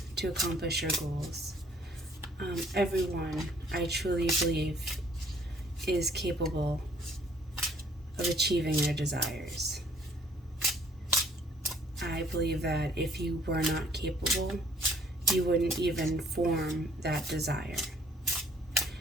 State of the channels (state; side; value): normal; both; correlation 0.59